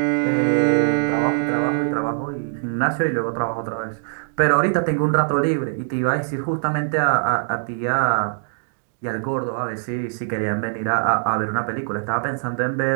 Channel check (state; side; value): silent; left; digital silence